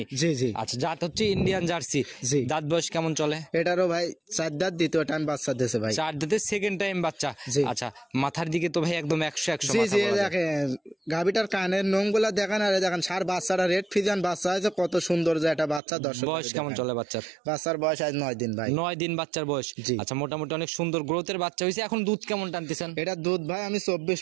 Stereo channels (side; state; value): left; drops out; at 15.8 s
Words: জি জি। আচ্ছা, জাত হচ্ছে ইন্ডিয়ান জার্সি। জি। দাঁত বয়স কেমন চলে? এটারও ভাই 4 দাঁত, 2য় টাইম বাচ্চা দিয়েছে ভাই। 4 দাঁতে সেকেন্ড টাইম বাচ্চা। জি। আচ্ছা, মাথার দিকে তো ভাই একদম 100 জি মাথা জি, বলা যায়। দেখেন গাভিটার কানের নোংগুলা দেখেন, আর দেখেন সার বাচ্চাটা রেড ফিজান বাচ্চা হয়েছে, কত সুন্দর যে একটা বাচ্চা বাচ্চা, দর্শক বয়স কেমন চলে বাচ্চার? বাচ্চার বয়স আজ 9 দিন ভাই। 9 দিন বাচ্চার বয়স। জি। আচ্ছা, মোটামুটি অনেক সুন্দর গ্রোথের বাচ্চা হয়েছে। এখন দুধ কেমন টানতেছেন? এটা দুধ ভাই আমি